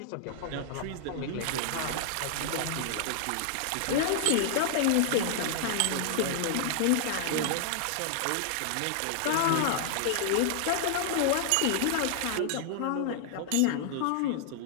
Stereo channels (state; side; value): different; both; correlation -0.01